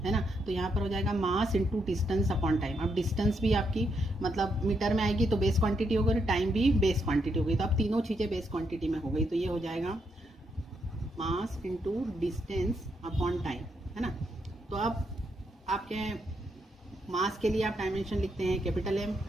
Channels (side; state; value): both; normal; correlation 0.79